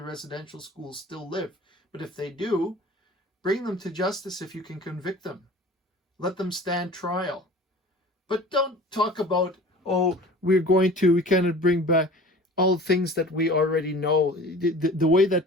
residential schools still live. But if they do, bring them to justice if you can convict them. Let them stand trial. But don't talk about, oh, we can't bring back all things that we already know. The way that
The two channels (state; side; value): normal; both; correlation 0.42